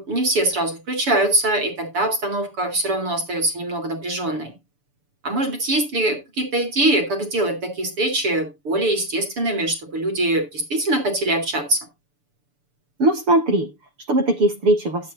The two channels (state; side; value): late; left; 6.9 ms